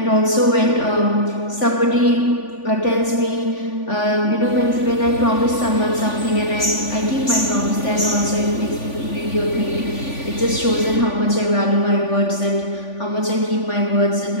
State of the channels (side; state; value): right; late; 3.5 ms